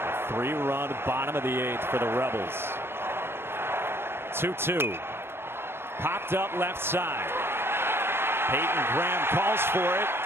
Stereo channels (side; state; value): left; late; 0.12 ms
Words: A 3-run bottom of the 8th for the Rebels. 2-2. Popped up left side. Hayden Graham calls for it.